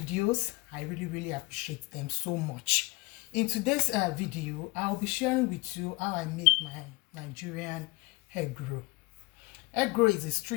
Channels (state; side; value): quieter; right; 24.4 dB